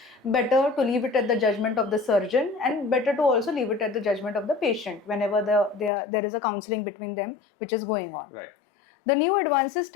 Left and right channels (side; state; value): right; drops out; at 5.9 s